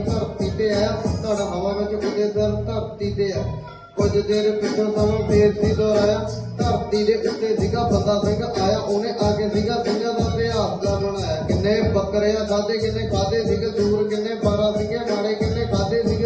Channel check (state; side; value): identical; both; correlation 1.00